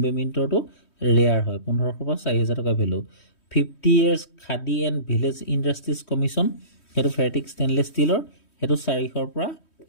মিণ্টৰটো ৰেয়াৰ হয় 1500 পৰা 4000 টকা value 50 years khadi and village industries commission সেইটো ফেৰটিক ষ্টেইনলেছ ষ্টিলৰ সেইটো 400 পৰা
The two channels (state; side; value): late; right; 3.1 ms